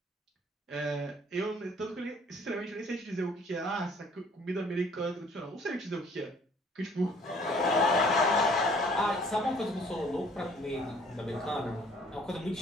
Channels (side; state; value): both; normal; correlation 0.57